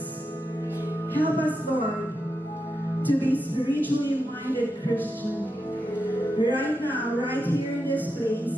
Help us, Lord, to be spiritually minded Christian. Right now, right here in this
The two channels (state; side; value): normal; both; correlation 0.87